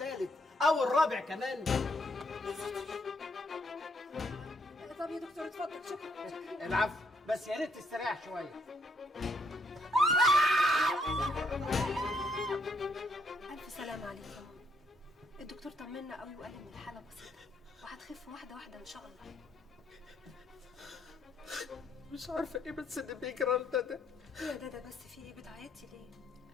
او الرابع كمان؟ طب يا دكتور اتفضل. شكرا. العفو، بس يا ريت تستريح شوية. ألف سلامة عليك يا ماما. الدكتور طمنا قوي وقال إن الحالة بسيطة وهتخف واحدة واحدة إن شاء الله. مش عارفه ايه بس اللي بيجرى لنا ده. ايه يا دادا بس في ايه؟ بتعيطي ليه؟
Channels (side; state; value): both; normal; correlation 0.73